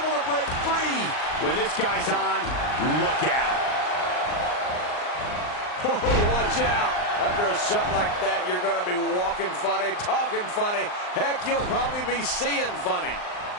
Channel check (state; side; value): late; right; 39 ms